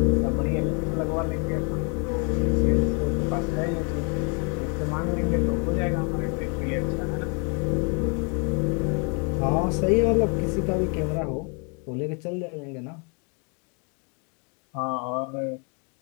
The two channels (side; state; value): right; quieter; 36.6 dB